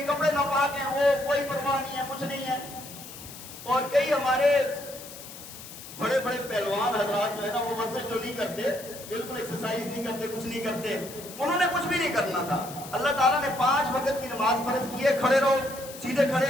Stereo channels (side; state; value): left; noise; hiss, 14 dB below the sound